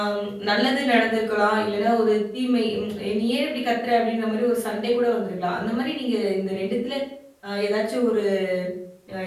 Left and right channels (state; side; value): identical; both; correlation 1.00